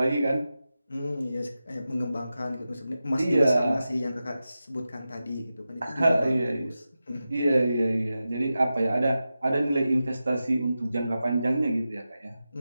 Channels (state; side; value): inverted; both; correlation -0.92